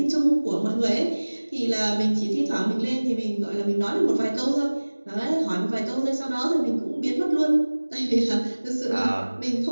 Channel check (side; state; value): both; inverted; correlation -1.00